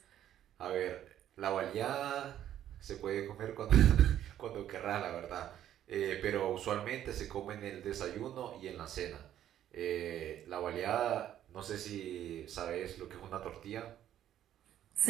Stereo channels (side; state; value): left; quieter; 11.3 dB